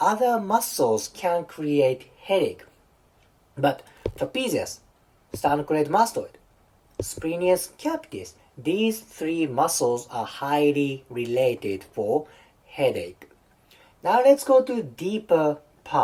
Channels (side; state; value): both; identical; correlation 1.00